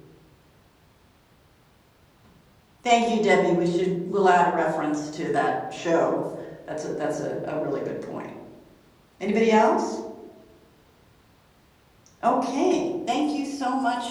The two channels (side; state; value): both; identical; correlation 1.00